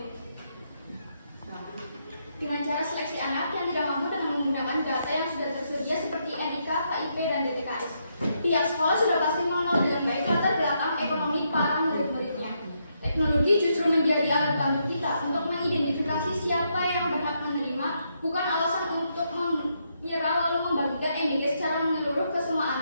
Dengan cara seleksi anak yang tidak mampu dengan menggunakan data yang sudah tersedia seperti NIK, KIP, dan DTKS. Pihak sekolah sudah pasti mengenal dengan baik latar belakang ekonomi para murid-muridnya. Teknologi justru menjadi alat bantu kita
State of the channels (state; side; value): inverted; both; correlation -0.78